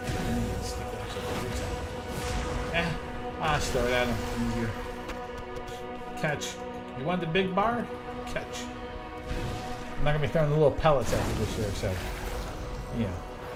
think you need a stick that actually reaches out. I'll just throw it at them. Easier. Catch. You want the big bar? Catch. I'm not gonna be throwing the little pellets at you this year, so you know,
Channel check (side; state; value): both; identical; correlation 1.00